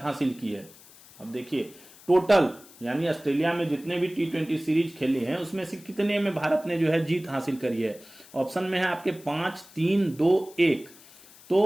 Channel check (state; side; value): noise; left; hiss, 23 dB below the sound